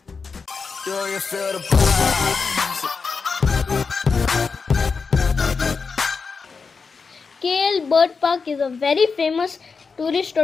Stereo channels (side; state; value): right; quieter; 5.0 dB